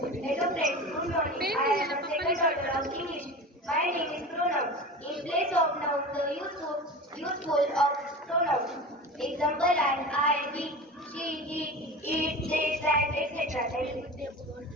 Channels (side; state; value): both; normal; correlation 0.32